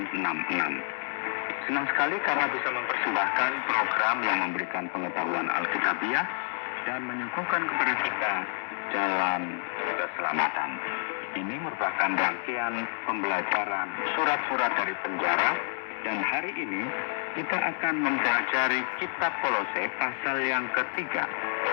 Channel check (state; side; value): silent; right; 59 dB below the other